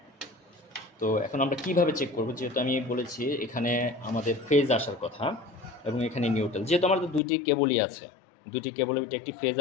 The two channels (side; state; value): right; drops out; at 7.2 s